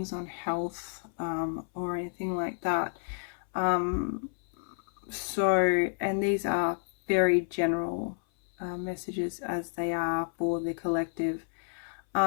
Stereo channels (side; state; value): right; silent; 58 dB below the other